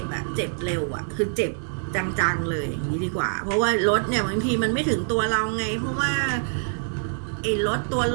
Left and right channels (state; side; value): silent; left; 62 dB below the other